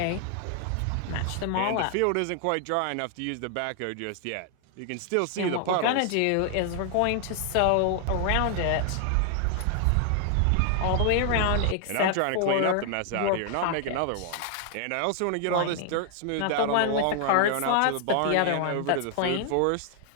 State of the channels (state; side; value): different; both; correlation 0.00